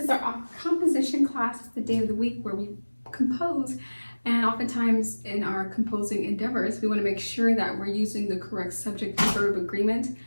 our composition class. It's the day of the week where we compose. And oftentimes in our composing endeavors, we want to make sure that we're using the correct subject-verb agreement.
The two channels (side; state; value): both; inverted; correlation -1.00